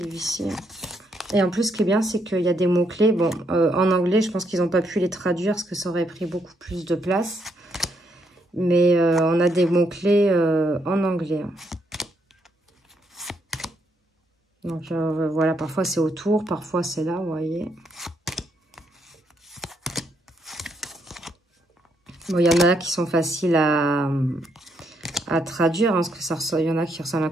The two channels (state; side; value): normal; both; correlation 0.75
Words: Et en plus, ce qui est bien, c'est qu'il y a des mots-clés. Bon, en anglais, je pense qu'ils n'ont pas pu les traduire parce que ça aurait pris beaucoup plus de place. Mais on a des mots-clés en anglais. Hein. Donc, voilà, parfois c'est autour, parfois c'est là, vous voyez. Bon, il y en a qui sont faciles à traduire, hein, parce que il y en a qui ressemblent